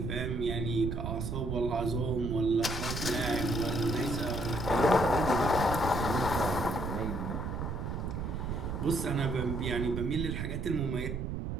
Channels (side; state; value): right; noise; rumble, 3 dB below the sound